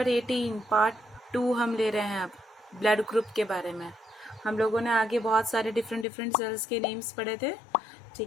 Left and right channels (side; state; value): right; drops out; at 6.1 s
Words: 18 पार्ट 2 हम ले रहे हैं अब ब्लड ग्रुप के बारे में। हम लोगों ने आगे बहुत सारे डिफरेंट सेल्स के नेम्स पढ़े थे,